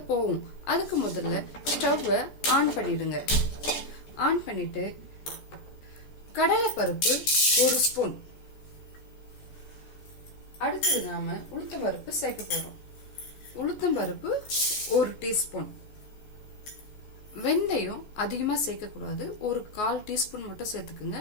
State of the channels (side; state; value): right; late; 14 ms